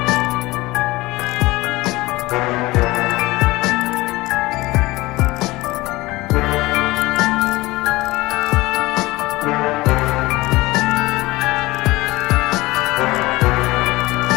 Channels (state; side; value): quieter; right; 20.3 dB